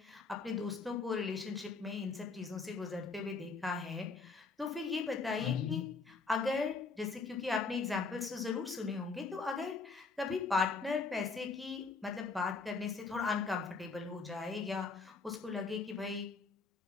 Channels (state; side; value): quieter; right; 4.4 dB